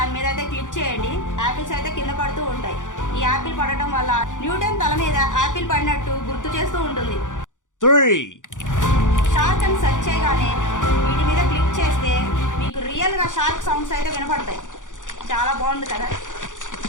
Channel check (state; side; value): late; right; 0.87 ms